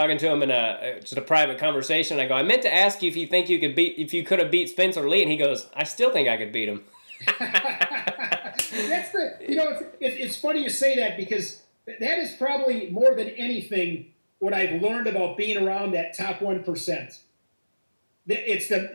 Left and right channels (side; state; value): both; inverted; correlation -1.00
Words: to him in just a private conversation. I go, I meant to ask you if you think if you could have beat Spencer Lee, and he goes, I still think I could beat him. It's funny you say that, because that is probably more than anything what I've learned about being around that top 1%. It's